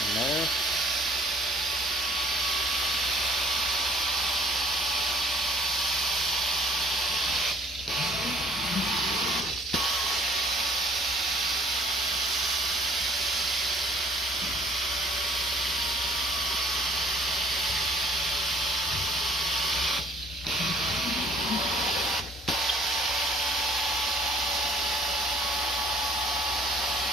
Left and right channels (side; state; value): both; normal; correlation 0.58